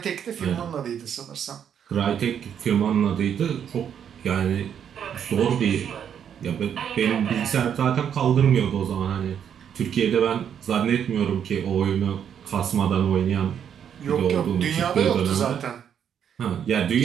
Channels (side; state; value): left; quieter; 8.5 dB